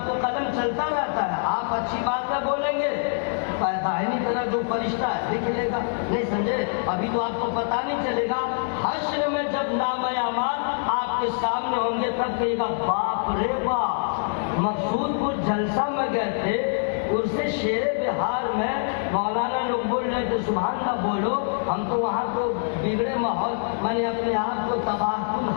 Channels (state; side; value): silent; right; digital silence